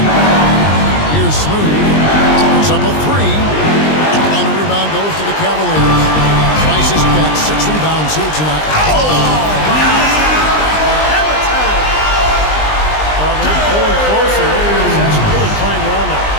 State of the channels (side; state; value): right; late; 20 ms